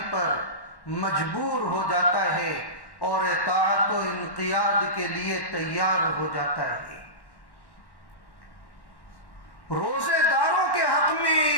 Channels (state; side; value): late; right; 1.1 ms